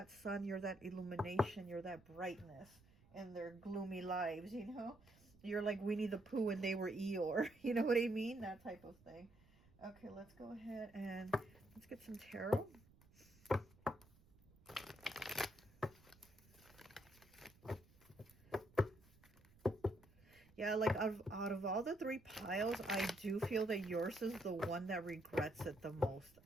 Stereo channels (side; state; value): right; noise; rumble, 27 dB below the sound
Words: sun, you're that illumination, you're that brightness in their gloomy lives, you know? You're like Winnie the Pooh and they were Eeyore. You know what I mean? That type of thing. Okay, let's go ahead and let's get some tarot. Yeah, like out of all the 3 piles, I do feel that yours is the one that regrets it the most,